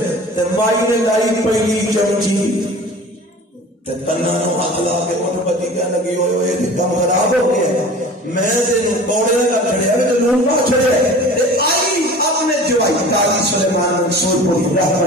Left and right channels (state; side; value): normal; both; correlation 0.41